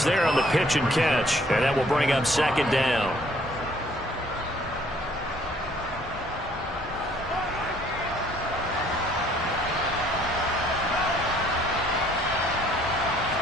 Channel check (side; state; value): both; normal; correlation 0.61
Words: there on the pitch and catch. And that will bring up 2nd down.